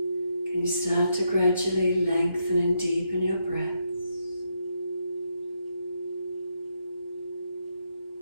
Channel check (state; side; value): inverted; both; correlation -0.81